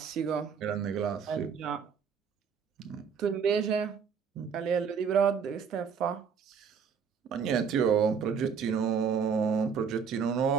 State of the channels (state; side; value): quieter; left; 6.6 dB